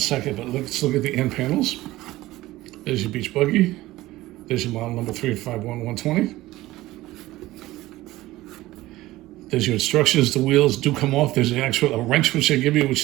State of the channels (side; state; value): left; quieter; 17.3 dB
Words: but let's look at the end panels. There's your beach buggy. There's your model number 351120. There's your instructions. The wheels do come off. There's a wrench which they give you,